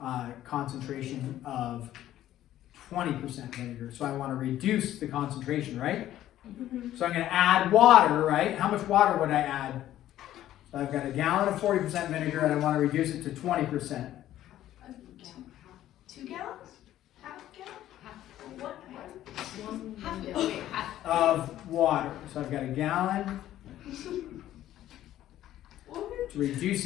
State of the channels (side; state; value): right; quieter; 13.0 dB